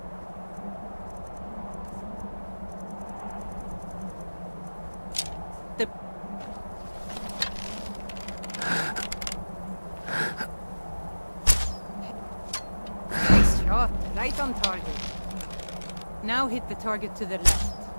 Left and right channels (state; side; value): inverted; both; correlation -1.00